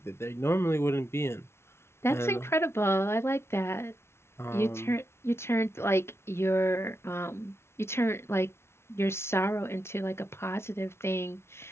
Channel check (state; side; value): late; right; 0.12 ms